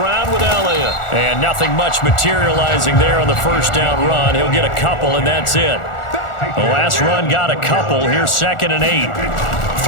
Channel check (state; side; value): late; right; 1.4 ms